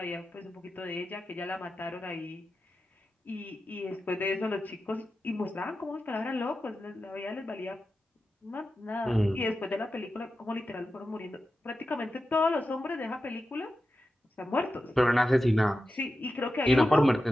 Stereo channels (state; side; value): normal; both; correlation 0.91